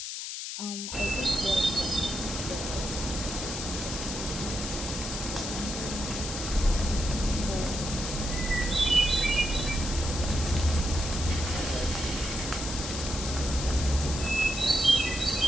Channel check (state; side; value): noise; left; hiss, 6 dB below the sound